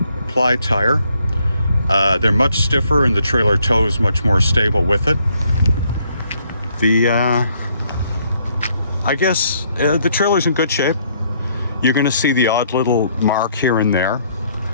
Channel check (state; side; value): inverted; both; correlation -0.69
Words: tire. They're much stiffer, and the trailer toe is much more stable with it. I guess the trailer's in good shape. You're gonna see the odd little mark here and there,